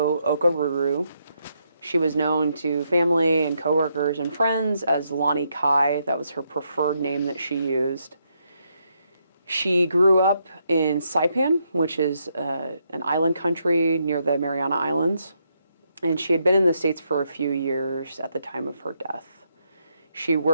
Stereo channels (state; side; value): inverted; both; correlation -0.78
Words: Okaruru. She was known to family and coworkers and friends as Loni Kai. That was her preferred name that she used. She grew up in Saipan, which is an island country near the Mariana Islands, and she had been in the States for a few years at the time of her death. She